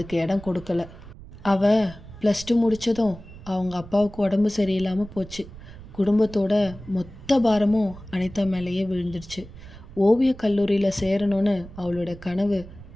இடம் கொடுக்கல. அவள் +2 முடித்ததும் அவங்க அப்பாவுக்கு உடம்பு சரியில்லாமல் போச்சு. குடும்பத்தோட மொத்த பாரமும் அனிதா மேலேயே விழுந்துடுச்சு. ஓவிய கல்லூரியில் சேரணும்னு அவளோட கனவு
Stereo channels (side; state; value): right; noise; rumble, 17 dB below the sound